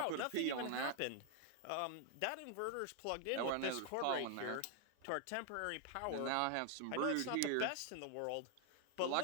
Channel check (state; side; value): different; both; correlation 0.00